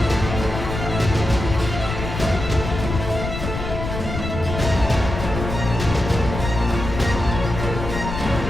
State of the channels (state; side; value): noise; left; rumble, 6 dB below the sound